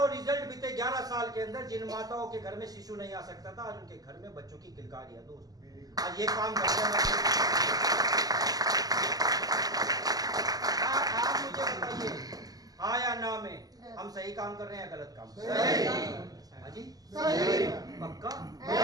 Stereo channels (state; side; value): late; left; 0.18 ms